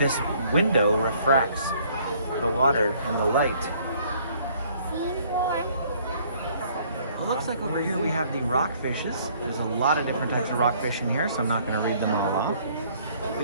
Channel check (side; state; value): both; inverted; correlation -0.60